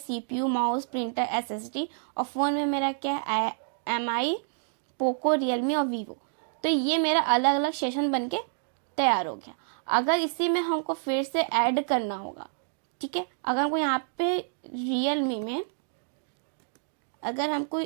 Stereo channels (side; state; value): left; silent; digital silence